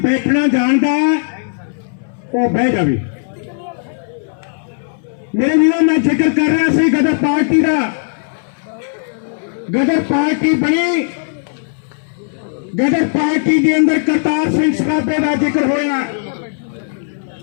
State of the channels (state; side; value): silent; right; 65 dB below the other